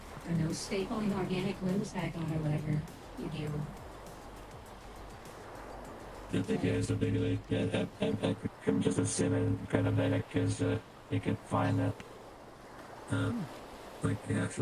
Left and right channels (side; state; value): both; identical; correlation 1.00